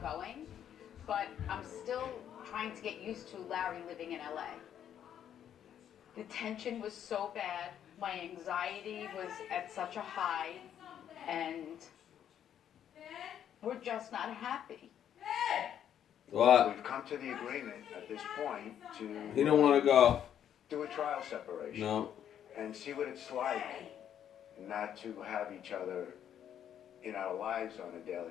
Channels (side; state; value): right; quieter; 9.7 dB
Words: going, but I'm still trying to get used to Larry living in LA. The tension was so bad, my anxiety was at such a high, and we're just not happy. What? We've come to the agreement at this point to He don't want to go. do a trial separation No. and see what it's like not to have each other in our lives on a